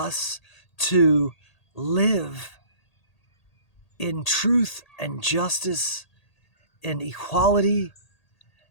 to live in truth and justice and equality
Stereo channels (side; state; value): right; late; 1.8 ms